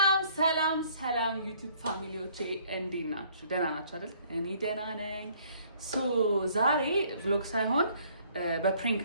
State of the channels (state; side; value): inverted; both; correlation -0.61